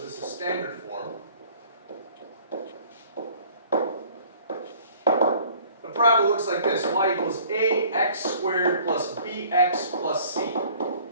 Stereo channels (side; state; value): both; inverted; correlation -0.53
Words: is standard form. The parabola looks like this. Y equals ax squared plus bx plus c.